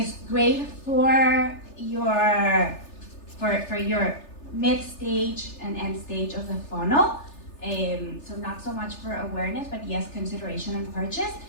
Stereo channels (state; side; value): late; right; 3.3 ms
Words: great for your mid-stage and end stage of the funnel. So not so much for awareness, but yes, consideration and purchase.